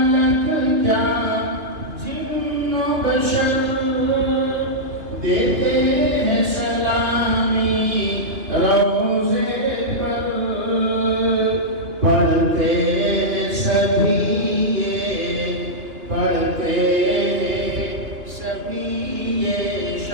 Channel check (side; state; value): left; late; 2.9 ms